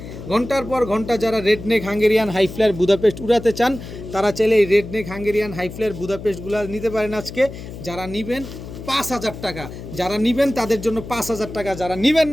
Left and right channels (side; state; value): left; noise; hum, 12 dB below the sound